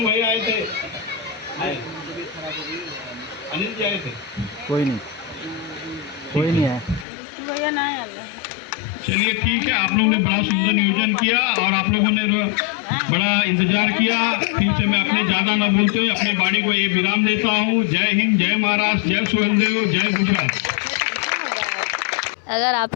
भैया आए थे, अनिल जी आए थे। कोई नहीं है। चलिए ठीक है, आप लोगों ने बड़ा सुंदर नियोजन किया और आप लोगों ने बड़ा इंतजार किया। फिर से मैं अपने ज्यादा न बोलते हुए अपने वाणी को ये विराम देता हूँ। जय हिंद, जय महाराष्ट्र, जय सोहेलदेव, जय गुजरात। अगर आप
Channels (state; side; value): drops out; right; at 7.1 s